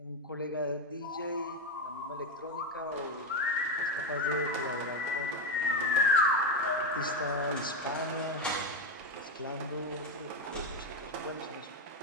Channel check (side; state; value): both; normal; correlation 0.09